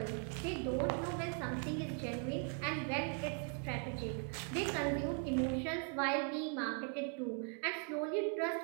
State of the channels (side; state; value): left; quieter; 37.7 dB